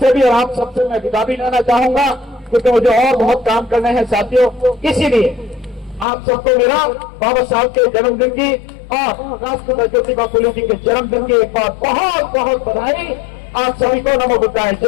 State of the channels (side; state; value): right; drops out; at 6.1 s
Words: भी और आप सबसे मैं विदा भी लेना चाहूंगा, क्योंकि मुझे और बहुत काम करने हैं साथियों। इसीलिए आप सबको मेरा बाबा साहब के जन्मदिन की और राष्ट्रपिता ज्योतिबा फुले जी के जन्मदिन की एक बार बहुत बहुत बधाई। आप सभी को नमो बुद्धाय,